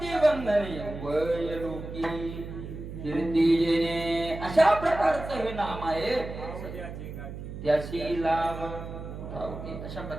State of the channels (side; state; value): right; noise; hum, 9 dB below the sound